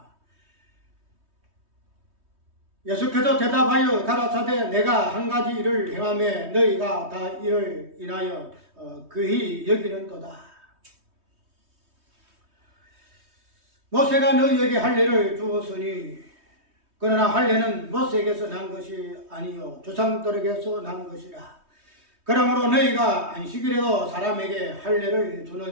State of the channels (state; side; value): late; left; 3.2 ms